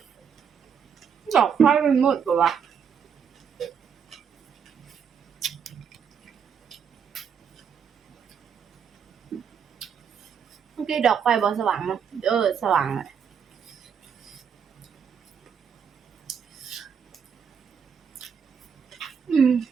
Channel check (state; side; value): quieter; left; 7.1 dB